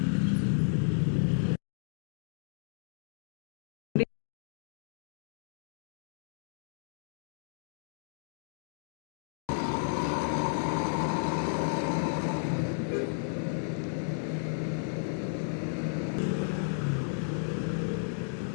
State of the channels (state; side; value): silent; right; digital silence